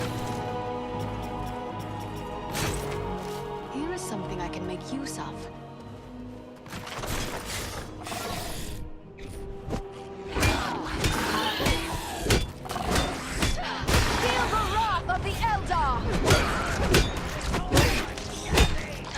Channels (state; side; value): identical; both; correlation 1.00